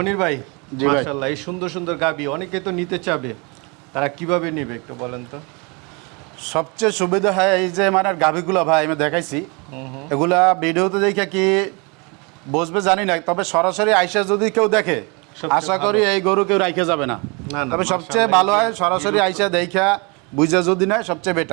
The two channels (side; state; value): left; quieter; 30.3 dB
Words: ভাই, জি ভাই। মাশাআল্লাহ, এই সুন্দর সুন্দর গাবি অনেকে তো নিতে চাবে, তারা কিভাবে নেবে একটু বলেন তো? সবচেয়ে সুবিধা হয় এই যে মানে গাভীগুলো ভাই আমি দেখাইছি, এগুলা ভিডিওতে দেখে কি বসবে জানি না, তবে সরাসরি আইসা যদি কেউ দেখে সবচেয়ে আশা করি এই গরু কেউ রাইখে যাবে না। না, না, তবে সবচেয়ে মাশাআল্লাহ, ভালো হয় সরাসরি আইসা দেখা বুঝা যদি নেয় সবচেয়ে